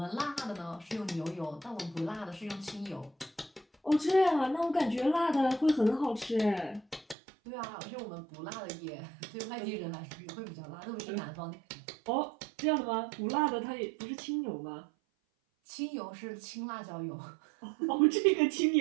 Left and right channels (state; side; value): drops out; left; at 7.2 s